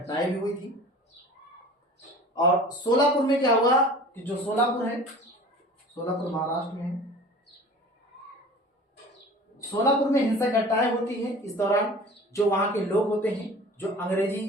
भी हुई थी। और सोलापुर में क्या हुआ कि जो सोलापुर है, सोलापुर महाराष्ट्र में है, सोलापुर में हिंसक घटनाएं होती हैं। इस दौरान जो वहां के लोग होते हैं, जो अंग्रेजी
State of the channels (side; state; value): both; normal; correlation 0.42